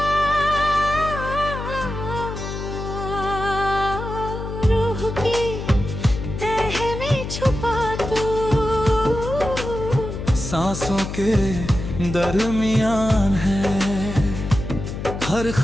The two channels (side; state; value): left; noise; hum, 7 dB below the sound